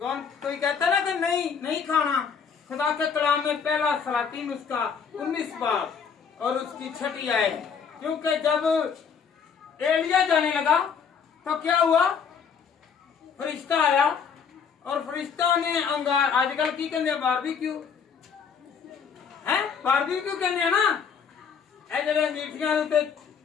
कौन कोई कहता ना कि नहीं खाना। खुदा के कलाम में पहला सलातीन उसका 19 बाब और उसकी 6ठी आयत। क्योंकि जब एलिया जाने लगा तो क्या हुआ? फरिश्ता आया और फरिश्ता ने अंगार, आजकल की कहते बारबेक्यू है, बारबेक्यू कहते ना, जरा मीठियां उत्ते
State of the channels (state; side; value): quieter; right; 6.5 dB